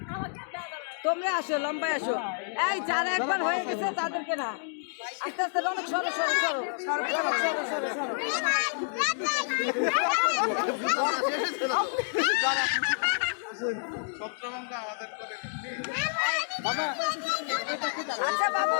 তোমরা আসো, লম্বায় আসো। এই যারা একবার হয়ে গেছে তাদেরকে না, আস্তে আস্তে অনেক সরো সরো সরো সরো সরো সরো সরো। আচ্ছা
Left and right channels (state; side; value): silent; right; digital silence